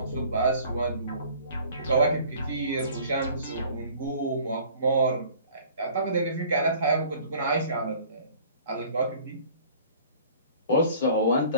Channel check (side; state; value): both; inverted; correlation -0.51